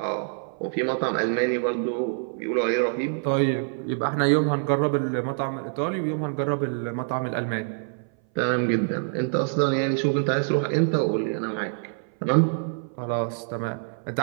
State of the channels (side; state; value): left; silent; 59 dB below the other